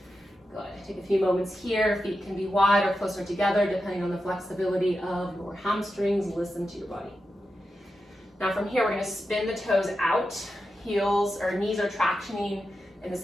Good, take a few moments here. Feet can be wide or closer together depending on the flexibility of your hamstrings. Listen to your body. Now from here, we're gonna spin the toes out. Heels or knees are tractioning in the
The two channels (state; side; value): normal; both; correlation 0.89